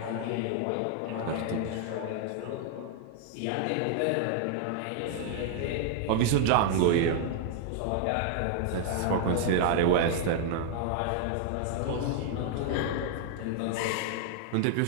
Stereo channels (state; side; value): different; both; correlation 0.00